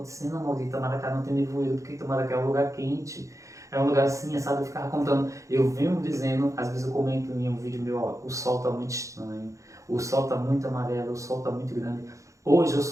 Maurício, Itamaracá não tem nevoeiro, porque Itamaracá é um lugar quente, é um lugar assim, sabe, eu ficava contando, eu venho dizendo, às vezes eu comento em um vídeo meu, ó, o sol está muito estranho, o sol está muito amarelo, o sol está muito grande, hoje o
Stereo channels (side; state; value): left; late; 0.15 ms